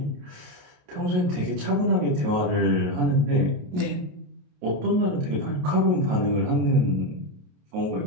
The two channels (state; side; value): late; left; 28 ms